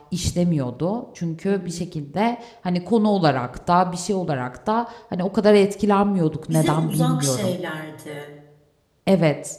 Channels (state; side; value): identical; both; correlation 1.00